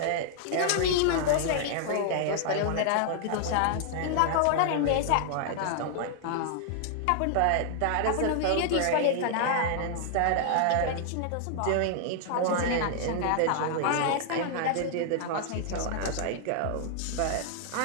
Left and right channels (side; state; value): both; different; correlation -0.01